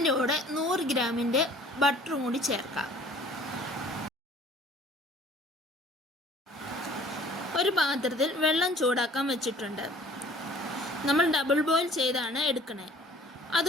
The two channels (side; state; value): both; normal; correlation 0.52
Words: കൂടെ 100 ഗ്രാമിൻ്റെ ബട്ടറും കൂടി ചേർക്കാം. ഒരു പാത്രത്തിൽ വെള്ളം ചൂടാക്കാൻ വെച്ചിട്ടുണ്ട്. നമ്മൾ ഡബിൾ ബോയിൽ ചെയ്താണ് എടുക്കണേ.